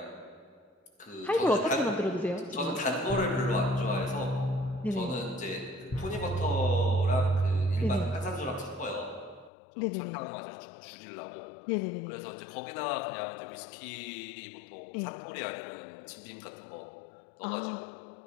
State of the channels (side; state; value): right; drops out; at 9.5 s